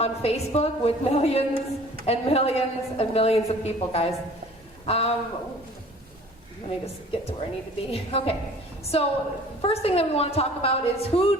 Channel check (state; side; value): normal; both; correlation 0.49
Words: Facebook with millions and millions and millions of people, guys. Let me just get to where I need to be. Okay, so first thing that we want to talk about is who